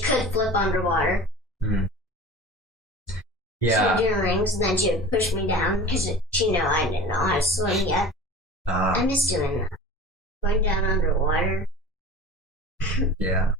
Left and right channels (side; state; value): both; normal; correlation 0.38